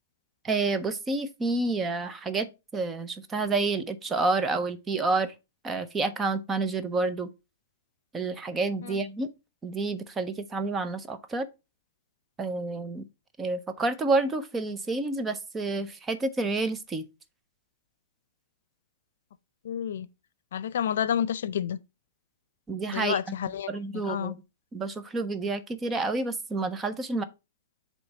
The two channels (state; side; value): normal; both; correlation 0.40